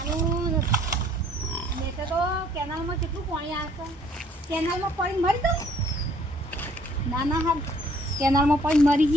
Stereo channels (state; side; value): normal; both; correlation 0.61